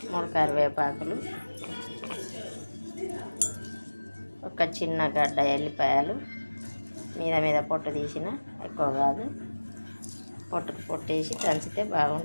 3 కరివేపాకులు, ఒక చిన్న గడ్డ ఎల్లిపాయలు, మీద పొట్టు తీసిన, ఎక్కువ కాదు, పొట్టేసి దంచితే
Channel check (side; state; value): both; inverted; correlation -1.00